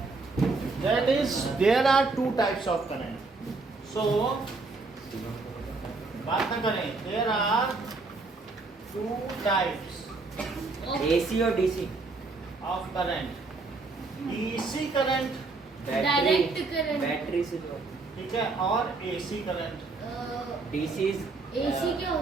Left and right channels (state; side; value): quieter; left; 3.8 dB